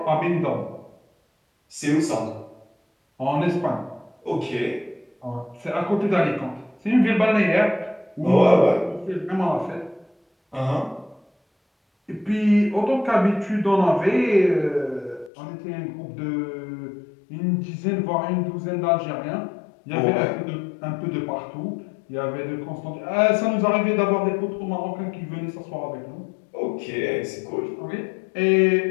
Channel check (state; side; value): drops out; right; at 15.3 s